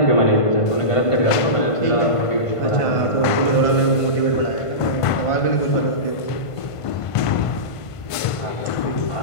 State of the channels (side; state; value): right; late; 1.5 ms